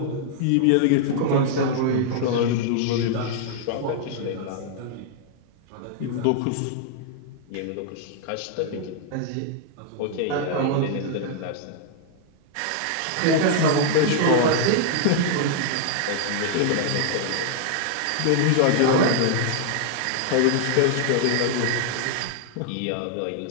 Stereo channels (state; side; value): different; both; correlation 0.00